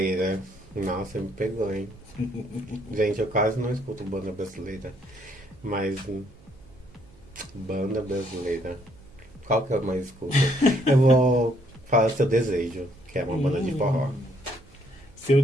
Nossa, me pegou, hein? Gente, eu quase não escuto banda brasileira. Mas... Banda brasileira. Qual que eu mais escuto? Eu vou falar Seu Desejo, que é uma banda de forró. Seu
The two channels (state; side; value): noise; right; hum, 27 dB below the sound